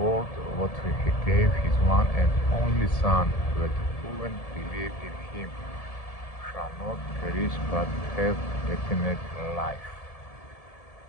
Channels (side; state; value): right; late; 1.7 ms